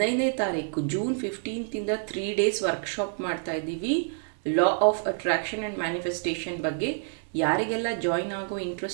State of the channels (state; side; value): silent; left; 59 dB below the other